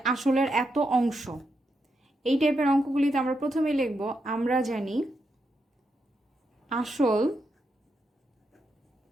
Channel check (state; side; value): normal; both; correlation 0.83